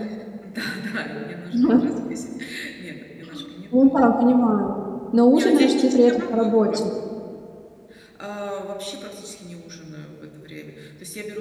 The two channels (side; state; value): both; identical; correlation 1.00